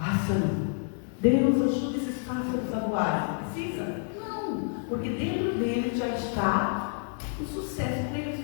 Deus ajuda esses pássaros a voar. Precisa? Não. Porque dentro dele já está o sucesso para eles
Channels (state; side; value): silent; right; 59 dB below the other